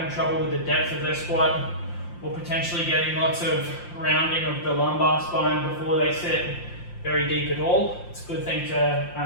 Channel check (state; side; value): late; right; 5.7 ms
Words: trouble with the depth of their squat, or potentially getting lots of rounding of the lumbar spine before they sit very deep at all. It's a good thing to